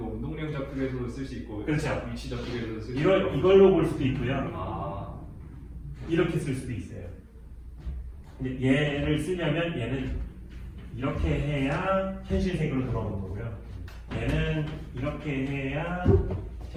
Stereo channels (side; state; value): both; identical; correlation 1.00